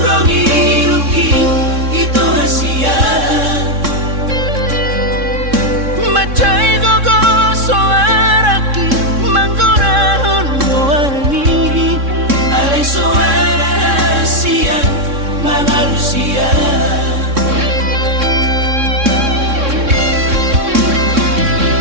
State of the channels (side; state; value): left; late; 3.6 ms